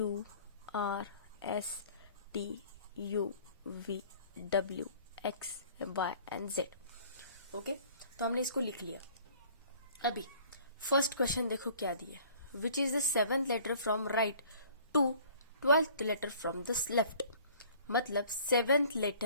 R S T U V W X Y and Z. Okay, तो हमने इसको लिख लिया। अभी फर्स्ट क्वेश्चन देखो क्या दिया, which is the 7th letter from right to 12th letter from the left. मतलब 7th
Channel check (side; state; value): both; inverted; correlation -0.52